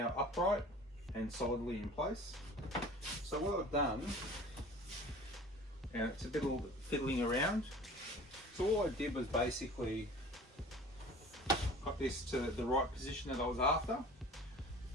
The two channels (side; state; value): both; normal; correlation 0.43